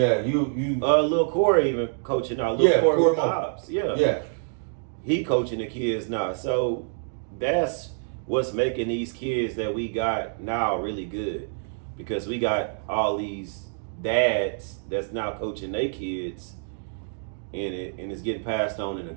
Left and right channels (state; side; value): silent; left; digital silence